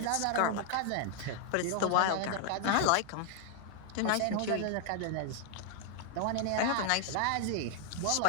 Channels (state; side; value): different; both; correlation 0.00